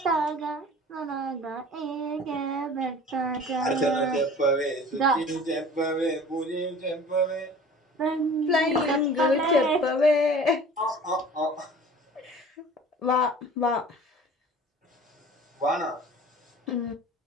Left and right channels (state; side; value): normal; both; correlation 0.44